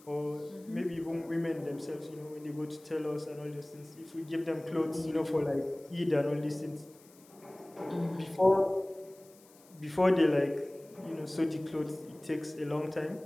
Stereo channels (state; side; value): noise; left; hiss, 26 dB below the sound